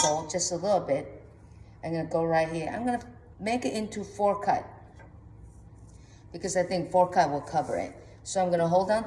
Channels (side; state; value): both; identical; correlation 1.00